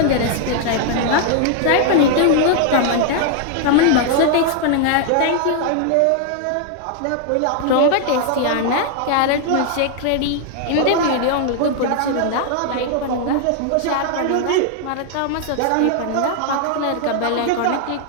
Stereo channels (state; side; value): different; both; correlation 0.00